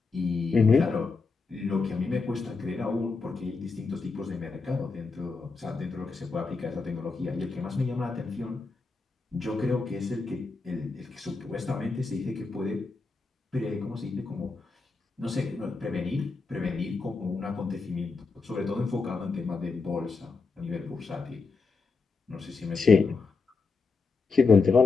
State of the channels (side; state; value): right; quieter; 4.3 dB